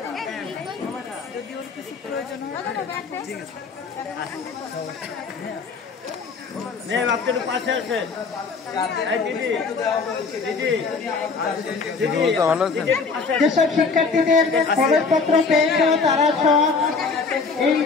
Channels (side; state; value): right; quieter; 4.7 dB